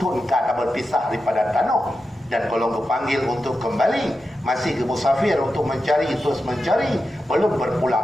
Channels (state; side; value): normal; both; correlation 0.90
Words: engkau tak berpisah daripada tanah. Dan kalau kepanggil untuk kembali, masih ke musafir untuk mencari, terus mencari, belum